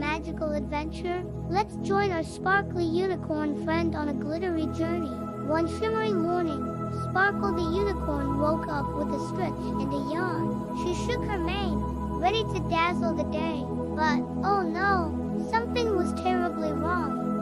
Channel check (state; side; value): identical; both; correlation 1.00